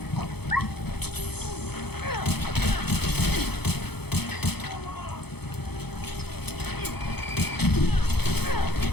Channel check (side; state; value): right; late; 0.97 ms